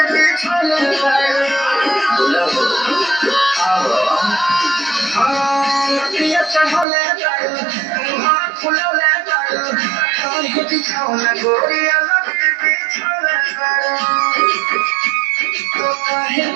बिछौले बारू नदिया चढ़ले बारू मुहावा फुलले बारू काहे बिछौना गोरिया लगे बिछौले बारू तो काहे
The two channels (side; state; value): left; drops out; at 6.9 s